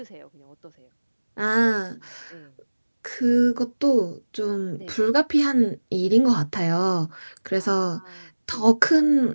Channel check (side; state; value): both; inverted; correlation -1.00